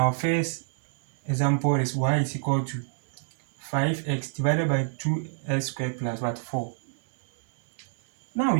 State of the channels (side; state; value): left; silent; 60 dB below the other